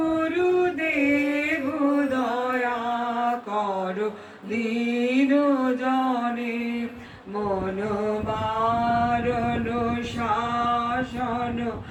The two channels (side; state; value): both; identical; correlation 1.00